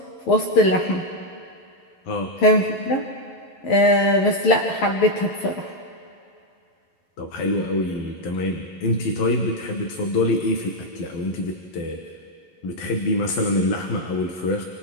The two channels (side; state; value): right; late; 11 ms